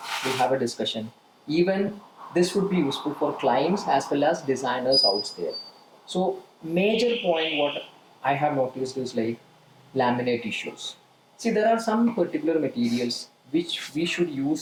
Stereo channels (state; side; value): identical; both; correlation 1.00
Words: we'll have a discussion. Even this would be useful for clients as well as designers out there. So major point what I have noticed is like laminate issues. See, there are some particular materials which we should